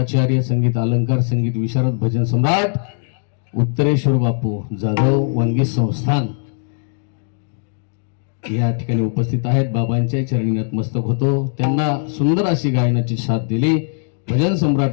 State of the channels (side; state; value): right; silent; digital silence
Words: संगीत अलंकार संगीत विशारद भजन सम्राट उत्तरेश्वर बापू जाधव वनगी संस्थान या ठिकाणी उपस्थित आहेत. बाबांच्या चरणी नतमस्तक होतो. त्यांना सुंदर अशी गायनाची साथ दिली. भजन